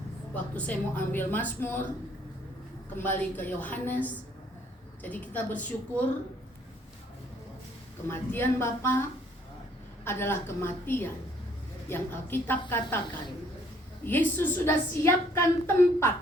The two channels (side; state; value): both; normal; correlation 0.63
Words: waktu saya mau ambil Mazmur, kembali ke Yohanes, jadi kita bersyukur kematian Bapa adalah kematian yang Alkitab katakan Yesus sudah siapkan